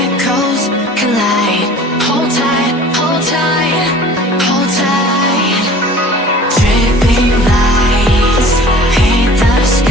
collide. Hold tight, hold tight, hold tight. Dripping lights paint the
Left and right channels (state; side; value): normal; both; correlation 0.45